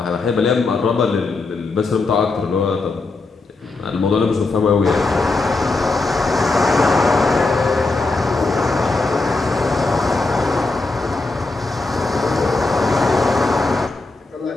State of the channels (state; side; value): quieter; right; 3.5 dB